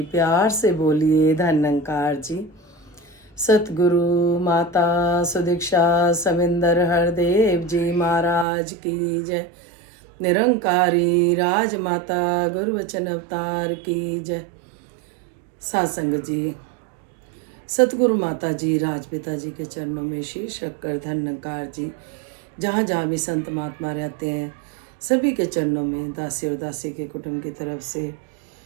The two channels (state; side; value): drops out; left; at 8.5 s